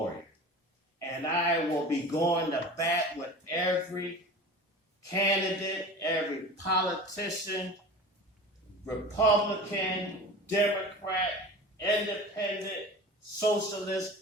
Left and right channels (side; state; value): both; normal; correlation 0.36